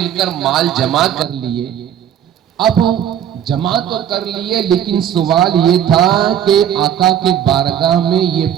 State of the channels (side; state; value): left; quieter; 9.9 dB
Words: کر مال جمع کر لیے اب جمع تو کر لیے لیکن سوال یہ تھا کہ آقا کے بارگاہ میں یہ